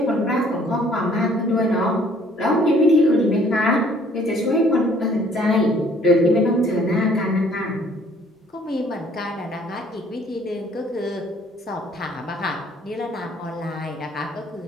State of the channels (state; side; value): normal; both; correlation 0.59